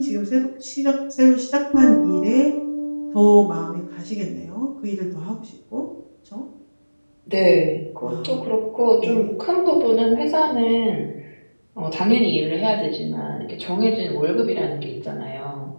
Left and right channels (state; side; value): inverted; both; correlation -1.00